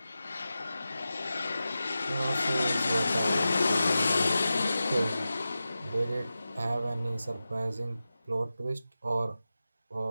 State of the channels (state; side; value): inverted; both; correlation -0.93